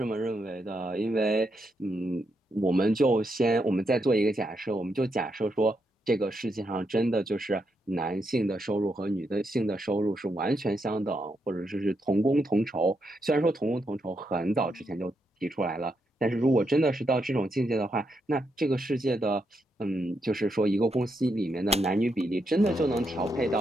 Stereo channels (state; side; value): normal; both; correlation 0.81